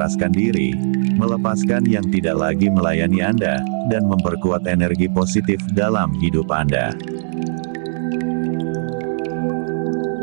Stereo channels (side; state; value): left; silent; 65 dB below the other